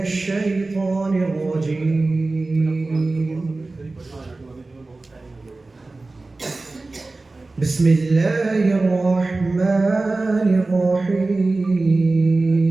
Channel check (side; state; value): left; quieter; 3.3 dB